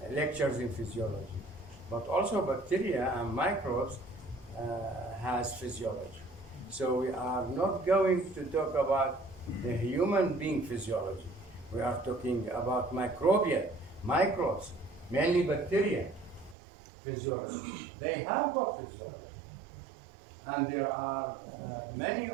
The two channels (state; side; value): drops out; left; at 16.6 s